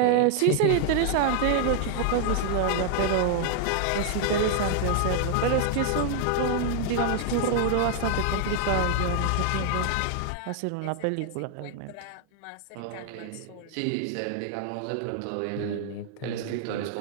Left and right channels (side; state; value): both; different; correlation 0.00